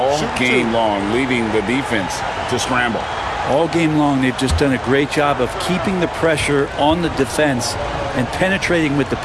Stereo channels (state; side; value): identical; both; correlation 1.00